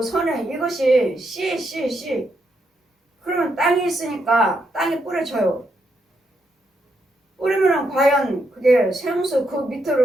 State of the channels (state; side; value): normal; both; correlation 0.80